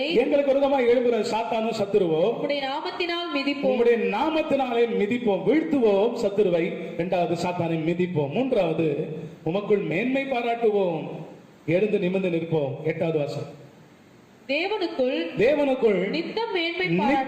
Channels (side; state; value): both; identical; correlation 1.00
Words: எங்களுக்கு விரோதமாய் எழுப்புகிற சாத்தானும் சத்துருவோ உம்முடைய நாமத்தினால் மிதிப்போம். உம்முடைய நாமத்தினாலே மிதிப்போம், வீழ்த்துவோம் சத்துருவை. 2வது சாத்தானை மிதிப்போம். 3வது உமக்குள் மேன்மை பாராட்டுவோம், எழுந்து நிமிர்ந்து நிற்போம். 8வது வசனம், தேவனுக்குள் நித்தம் மேன்மை